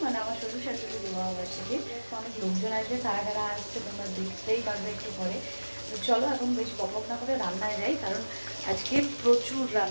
মানে আমার শ্বশুর শাশুড়ির বিবাহবার্ষিকী। অনেক লোকজন আসবে, কারা কারা আসছে তোমরা দেখতেই পারবে একটু পরে। তো চলো এখন বেশি বকবক না করে রান্নায় যাই, কারণ আজকে প্রচুর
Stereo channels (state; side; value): inverted; both; correlation -1.00